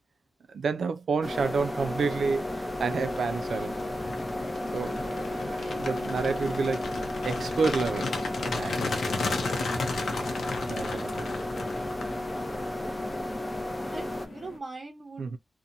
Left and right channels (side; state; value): both; normal; correlation 0.89